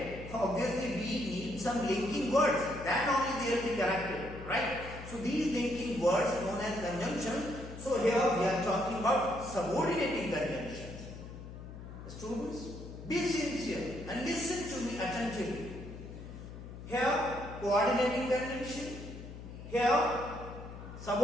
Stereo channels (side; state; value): left; noise; hum, 12 dB below the sound